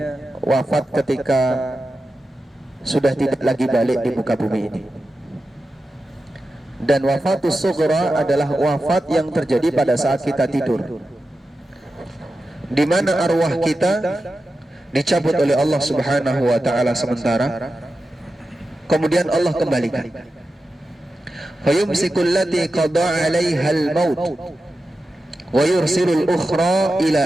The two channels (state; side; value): normal; both; correlation 0.92